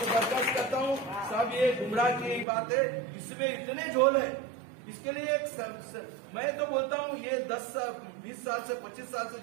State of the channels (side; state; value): left; drops out; at 2.5 s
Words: बर्दाश्त करता हूं, सब ये गुमराह की बात है, इसमें इतने झोल है। इसके लिए मैं तो बोलता हूं ये 10-20 साल से 25 साल से